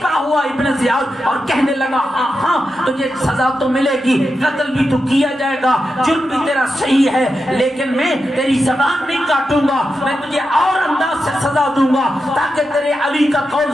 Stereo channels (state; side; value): normal; both; correlation 0.88